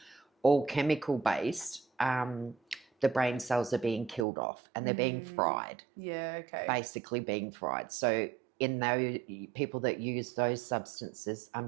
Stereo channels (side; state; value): left; drops out; at 4.2 s